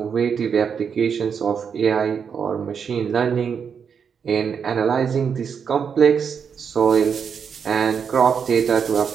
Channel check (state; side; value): quieter; left; 6.8 dB